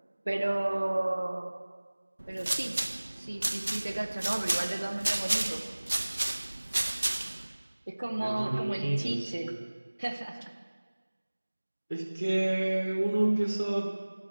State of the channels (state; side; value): inverted; both; correlation -1.00